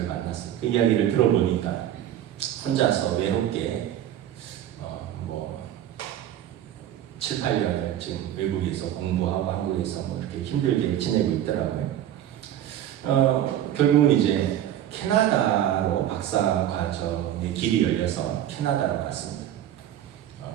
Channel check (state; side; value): quieter; left; 11.4 dB